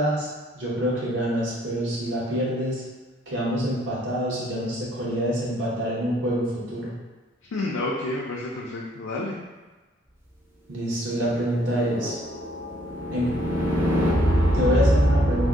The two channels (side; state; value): both; normal; correlation 0.65